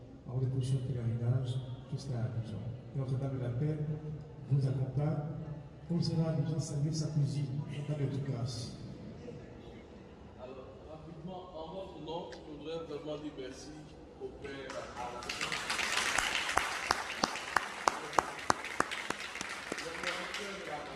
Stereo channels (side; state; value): both; identical; correlation 1.00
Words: avant de poursuivre le pèlerinage jusqu'à Abidjan. Notre-Dame de la Paix vous accompagne. Comme cela, Abidjan salue sa cousine, Notre-Dame de grâce. Alors, rapidement, en votre nom, je voudrais vraiment dire merci au Père Alain. Le directeur de la